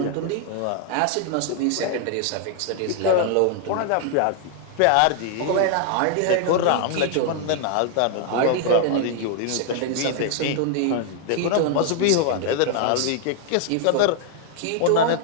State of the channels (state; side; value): different; both; correlation 0.00